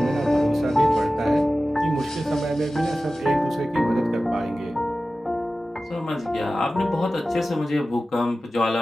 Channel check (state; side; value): normal; both; correlation 0.95